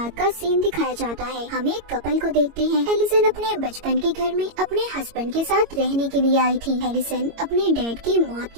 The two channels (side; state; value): left; late; 22 ms